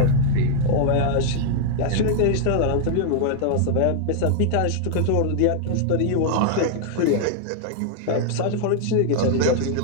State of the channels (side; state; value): both; different; correlation 0.00